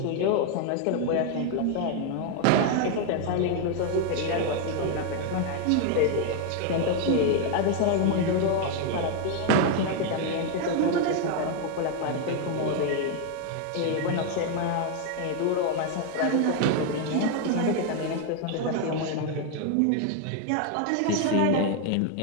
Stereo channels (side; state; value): both; different; correlation 0.01